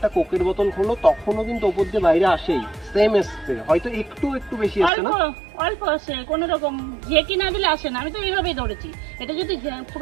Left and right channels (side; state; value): left; drops out; at 4.9 s